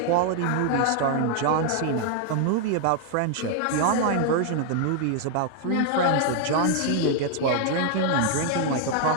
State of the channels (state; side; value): different; both; correlation 0.00